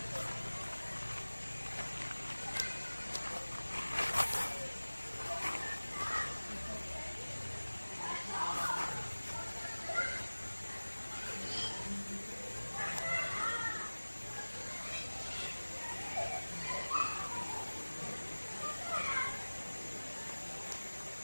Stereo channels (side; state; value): both; inverted; correlation -1.00